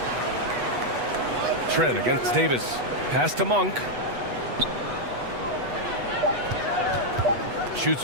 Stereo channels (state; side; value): late; left; 8.2 ms